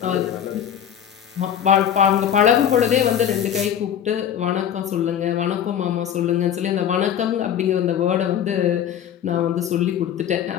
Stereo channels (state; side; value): quieter; right; 9.6 dB